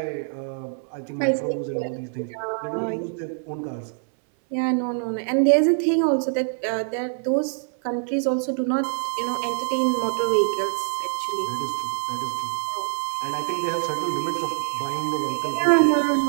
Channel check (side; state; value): left; silent; 62 dB below the other